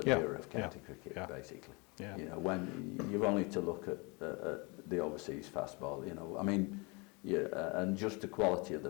era of county cricket, basically. Yeah. When you've only to look at the overseas fastball. And just the quality of the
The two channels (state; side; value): quieter; right; 29.0 dB